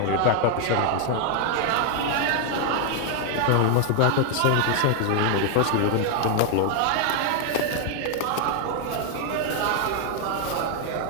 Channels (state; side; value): different; both; correlation 0.00